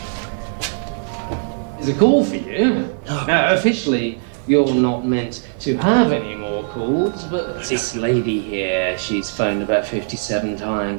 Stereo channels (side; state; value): left; silent; 55 dB below the other